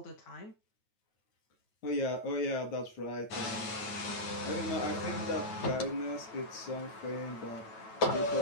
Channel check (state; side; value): late; right; 9.2 ms